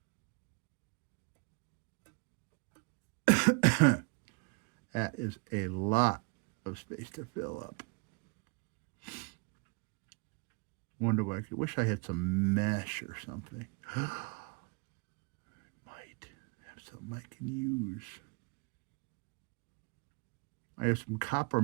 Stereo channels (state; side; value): quieter; left; 32.5 dB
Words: That is a lot of space to fill up. Wonder why. I wish I had some mesh or something. I might have something I can use. I have some copper